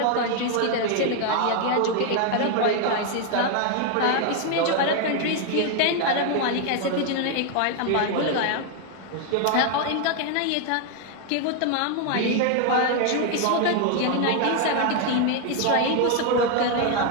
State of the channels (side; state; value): both; different; correlation 0.00